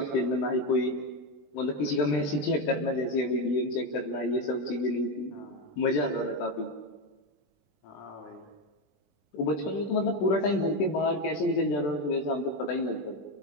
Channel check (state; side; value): late; right; 20 ms